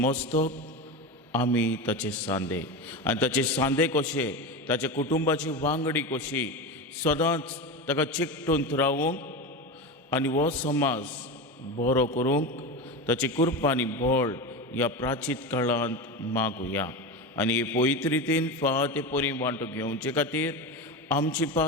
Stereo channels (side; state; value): both; normal; correlation 0.21